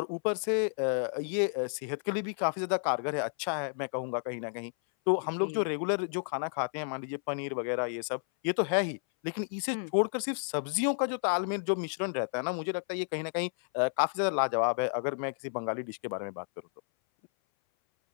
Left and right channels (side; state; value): right; silent; 57 dB below the other